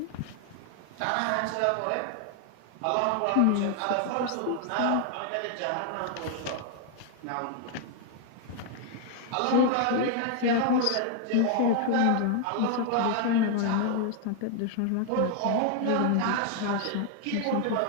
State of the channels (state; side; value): different; both; correlation 0.00